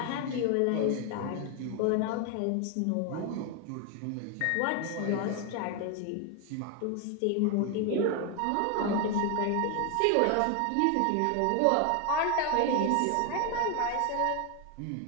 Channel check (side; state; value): both; different; correlation 0.01